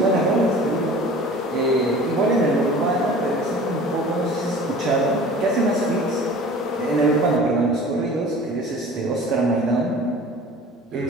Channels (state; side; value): normal; both; correlation 0.43